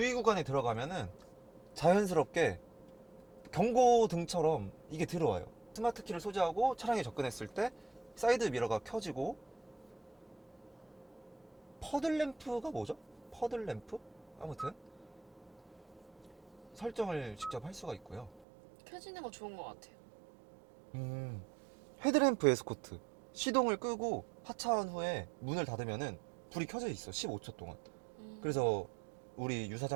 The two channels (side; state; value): left; drops out; at 18.4 s